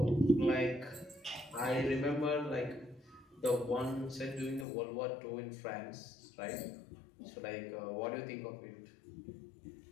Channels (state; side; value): drops out; right; at 4.7 s